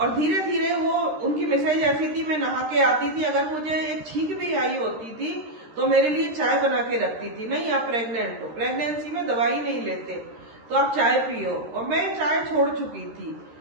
धीरे धीरे वो, उनकी मिसेज ऐसी थी, मैं नहा के आती थी, अगर मुझे एक छींक भी आई होती थी तो मेरे लिए चाय बना के रखती थी। नहीं, आप प्रेग्नेंट हो, प्रेगनेंसी में दवाई नहीं लेते। तो आप चाय पियो, और मैं चाय छोड़ चुकी थी,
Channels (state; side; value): late; left; 13 ms